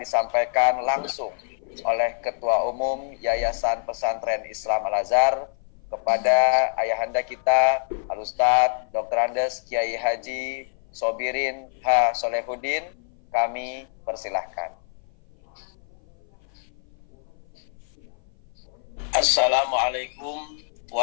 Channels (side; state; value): right; silent; 55 dB below the other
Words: disampaikan langsung oleh Ketua Umum Yayasan Pesantren Islam Al-Azhar kepada ayahanda kita Al-Ustadz Dr. Andes Kiai Haji Sobirin H. Solehuddin. Kami persilahkan. Assalamualaikum